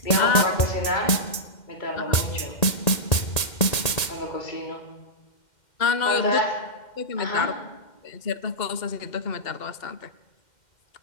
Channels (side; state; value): right; late; 1.8 ms